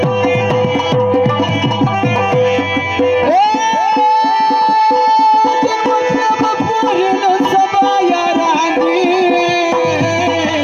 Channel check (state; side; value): identical; both; correlation 1.00